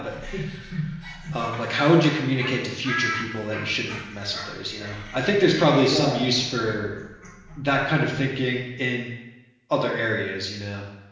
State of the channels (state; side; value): identical; both; correlation 1.00